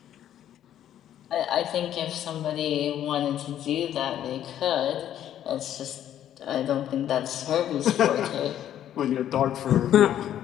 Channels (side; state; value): right; quieter; 11.1 dB